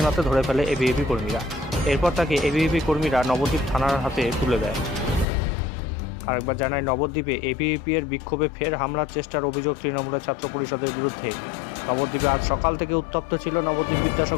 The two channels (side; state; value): right; drops out; at 5.2 s